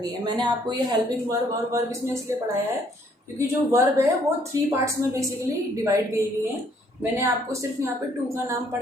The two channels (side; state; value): both; normal; correlation 0.65